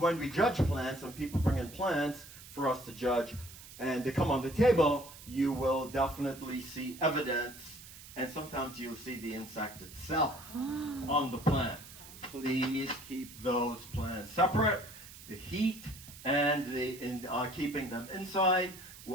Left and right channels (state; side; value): noise; right; hiss, 17 dB below the sound